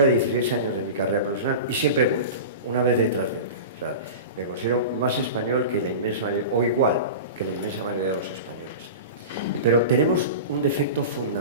de 16 años de mi carrera profesional y siempre he vuelto, una vez detrás de otra. O sea, me considero más español que la inmensa mayoría, o igual que la inmensa mayoría de los españoles. Pero tenemos un defecto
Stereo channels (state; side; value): inverted; both; correlation -0.30